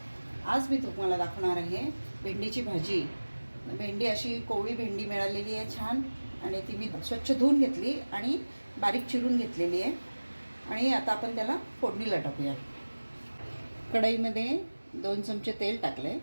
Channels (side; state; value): both; inverted; correlation -1.00